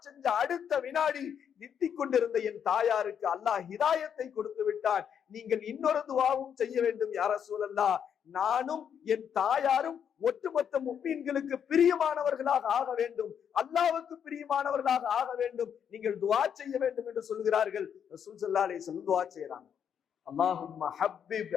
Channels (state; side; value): quieter; right; 8.1 dB